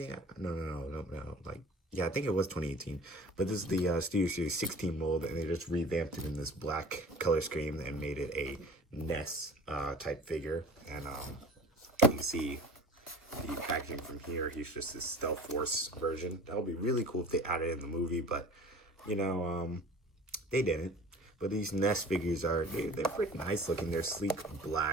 No. Yeah, I think it was 2018. But this is the Studio Series 16 mold, and they just revamped it in this black color scheme and made it a Nest type figure. And you can see the packaging from here. He's just this Stealth Force version. That would be really cool if they added it in the movie, but they didn't. But these Nest figures they're pretty nice looking. They're sleek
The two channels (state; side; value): normal; both; correlation 0.42